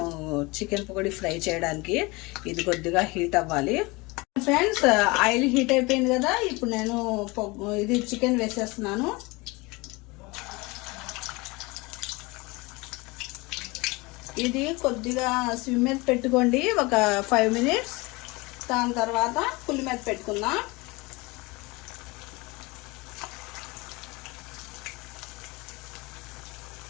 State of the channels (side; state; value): right; quieter; 24.5 dB